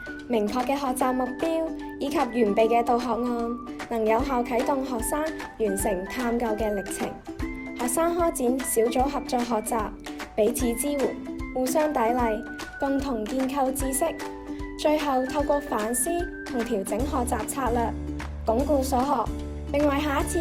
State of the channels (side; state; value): both; identical; correlation 1.00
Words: 明確嘅學習目標以及完備嘅導學案，能有效啟動學生完成探究嘅歷程。學生開展小組合作學習，彼此支援，互相砥礪，共同建構知識。最後透過反思同調整學習策略，鞏固所學，並為下一